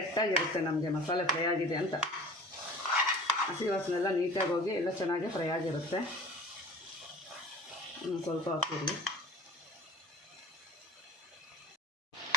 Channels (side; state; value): both; normal; correlation 0.43